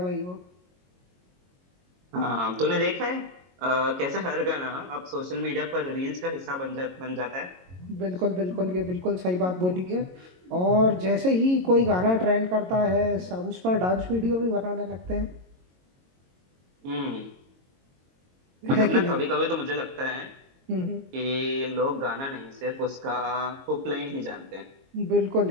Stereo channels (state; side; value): late; left; 22 ms